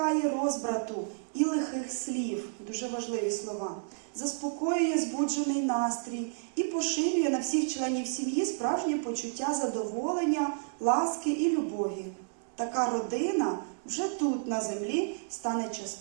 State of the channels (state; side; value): silent; left; digital silence